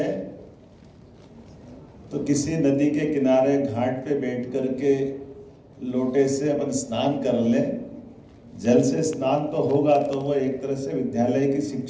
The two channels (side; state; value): both; identical; correlation 1.00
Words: तो किसी नदी के किनारे घाट पे बैठ करके लोटे से अपन स्नान कर लें, जल से स्नान तो होगा तो वो एक तरह से विद्यालय की